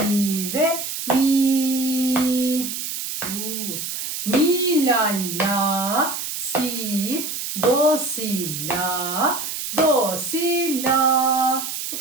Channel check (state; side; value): noise; right; hiss, 5 dB below the sound